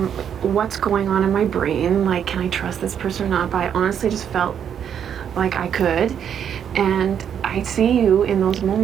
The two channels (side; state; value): left; quieter; 8.6 dB